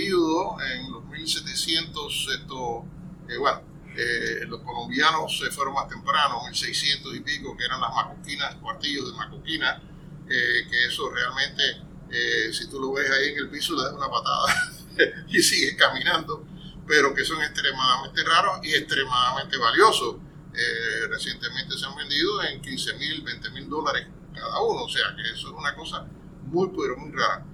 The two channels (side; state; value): both; identical; correlation 1.00